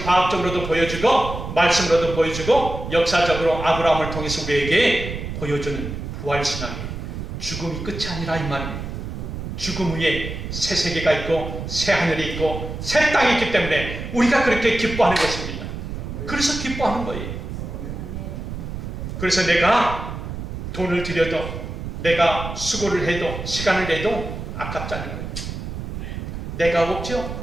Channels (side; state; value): right; noise; rumble, 7 dB below the sound